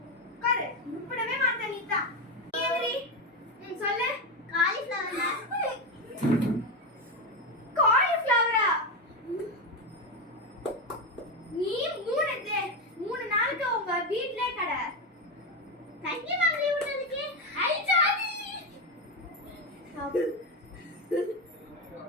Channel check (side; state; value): both; normal; correlation 0.12